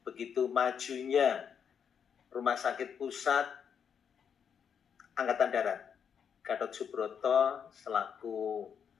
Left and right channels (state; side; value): quieter; right; 7.4 dB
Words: begitu majunya Rumah Sakit Pusat Angkatan Darat Gatot Subroto selaku